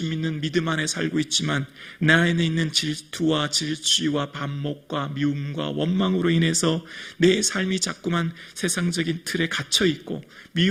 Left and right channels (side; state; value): both; identical; correlation 1.00